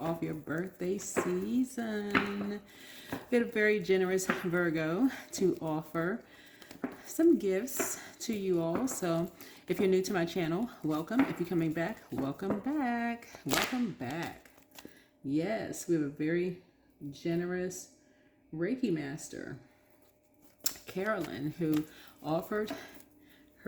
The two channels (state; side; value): identical; both; correlation 1.00